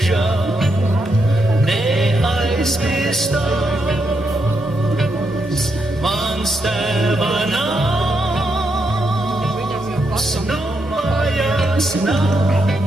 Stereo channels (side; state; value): both; normal; correlation 0.81